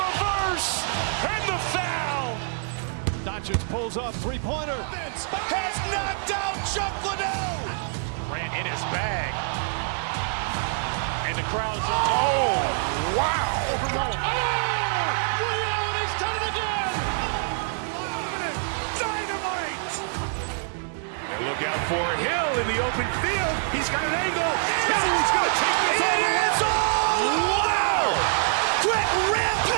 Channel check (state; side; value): silent; left; digital silence